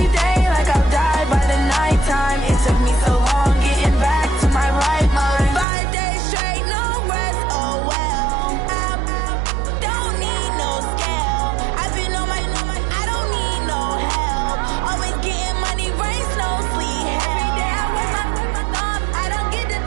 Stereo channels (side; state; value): left; drops out; at 5.7 s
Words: day like I'll die by the nighttime. It took me so long getting back to my right mind. 5 days straight, no rest, oh well. I don't need no scale. I've been on my, I don't need no help. Always getting money, rains, no sleep. Every day I work my thumb. I don't get to